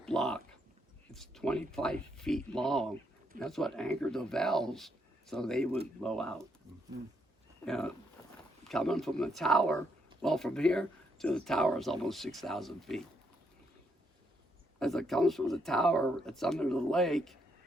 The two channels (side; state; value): both; normal; correlation 0.75